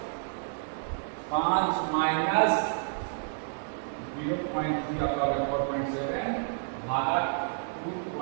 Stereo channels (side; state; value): left; silent; digital silence